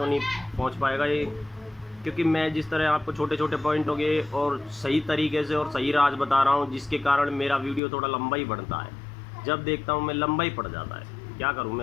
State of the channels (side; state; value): right; drops out; at 7.8 s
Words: नहीं पहुंच पाएगा ये, क्योंकि मैं जिस तरह आपको छोटे छोटे पॉइंटों के और सही तरीके से और सही राज बता रहा हूँ, जिसके कारण मेरा वीडियो थोड़ा लंबा ही बढ़ता है। जब देखता हूँ मैं लंबा ही पड़ जाता है, क्या करूँ